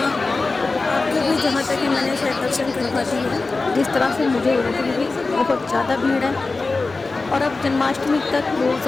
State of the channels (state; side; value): quieter; right; 3.7 dB